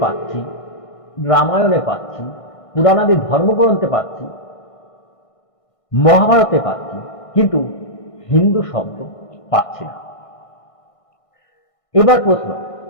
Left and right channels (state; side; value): late; right; 1.6 ms